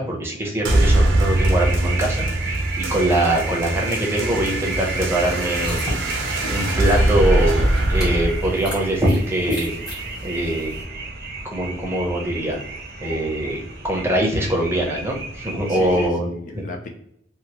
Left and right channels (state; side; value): normal; both; correlation 0.67